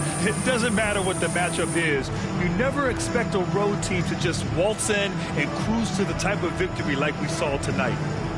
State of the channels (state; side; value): identical; both; correlation 1.00